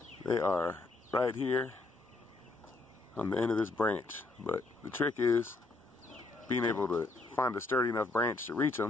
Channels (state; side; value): quieter; right; 3.2 dB